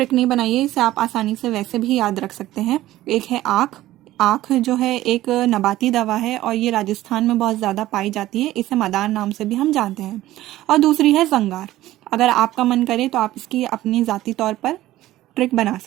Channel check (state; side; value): quieter; left; 15.3 dB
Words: नहीं बनाई है, इसे आप आसानी से वैसे भी याद रख सकते हैं. एक है आँख. आँख जो है एक नबाती दवा है और ये राजस्थान में बहुत ज़्यादा पाई जाती है. इसे मदार नाम से भी हम जानते हैं. और दूसरी है जंगार. अगर आपका मन करे तो आप इसकी अपनी ज़ाती तौर पर ट्रिक बना